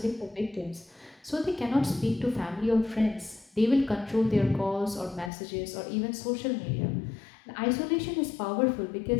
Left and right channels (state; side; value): drops out; right; at 5.3 s